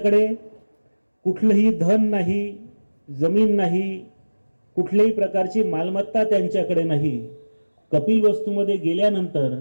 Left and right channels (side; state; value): both; inverted; correlation -1.00